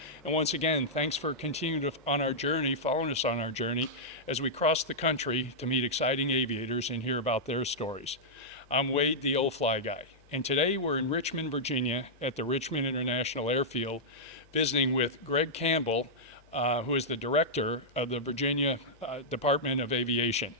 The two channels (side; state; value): left; noise; hum, 29 dB below the sound